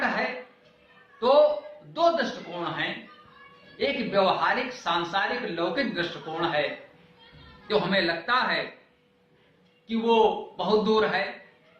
है। तो दो दृष्टिकोण हैं। एक व्यवहारिक सांसारिक लौकिक दृष्टिकोण है, जो हमें लगता है कि वो बहुत दूर है।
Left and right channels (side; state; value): both; identical; correlation 1.00